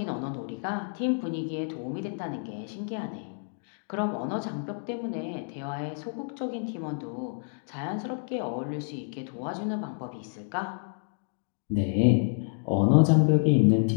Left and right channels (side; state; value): right; silent; digital silence